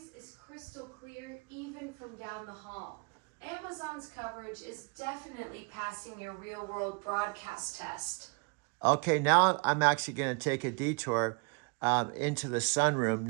is crystal clear even from down the hall. Amazon's coverage is definitely passing your real-world broadcast test. Okay, now I'm actually going to take a detour into the sunroom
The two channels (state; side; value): quieter; left; 32.3 dB